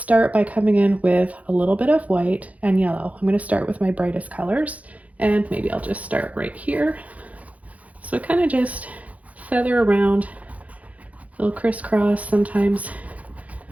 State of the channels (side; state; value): left; late; 0.069 ms